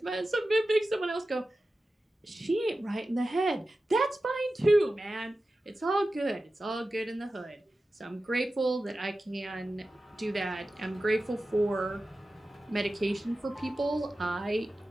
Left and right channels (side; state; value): both; normal; correlation 0.94